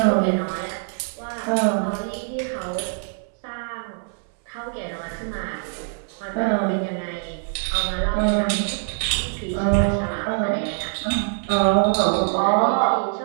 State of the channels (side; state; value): left; silent; 63 dB below the other